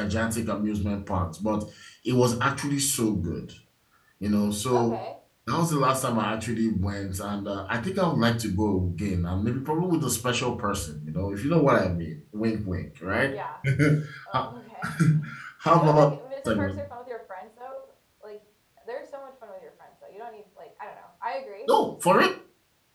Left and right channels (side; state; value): both; identical; correlation 1.00